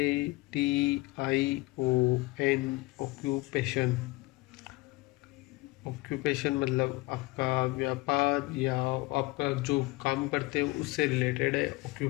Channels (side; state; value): right; quieter; 22.3 dB